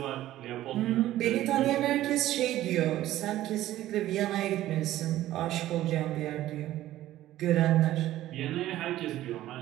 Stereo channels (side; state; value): left; quieter; 14.3 dB